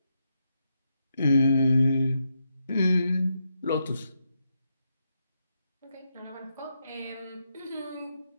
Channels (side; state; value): both; inverted; correlation -0.83